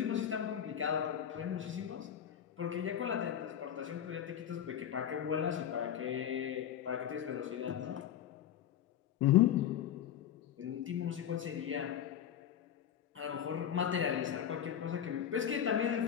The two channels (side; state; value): right; quieter; 9.7 dB